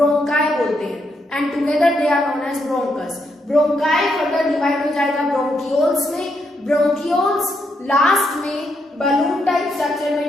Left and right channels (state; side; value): normal; both; correlation 0.79